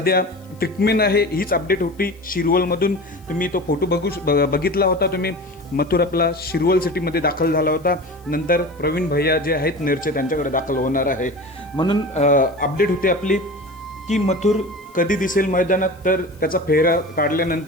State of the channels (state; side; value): noise; left; hiss, 30 dB below the sound